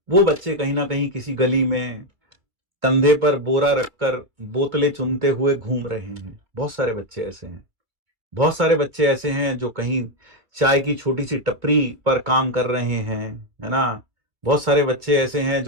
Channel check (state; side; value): late; left; 2.3 ms